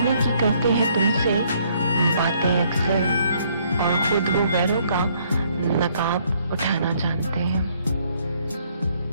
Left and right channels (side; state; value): both; inverted; correlation -0.66